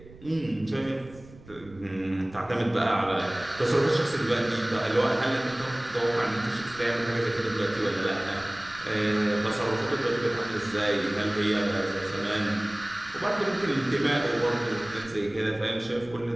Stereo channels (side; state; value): right; noise; rumble, 20 dB below the sound